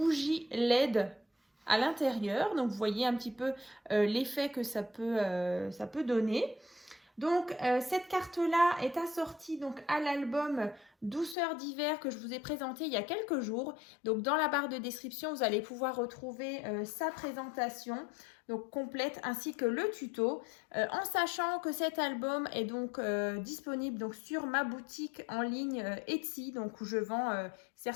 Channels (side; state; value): right; drops out; at 11.4 s